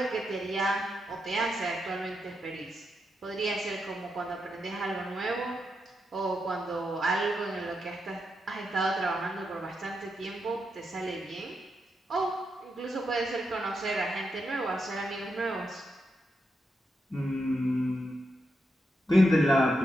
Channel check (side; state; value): both; normal; correlation 0.84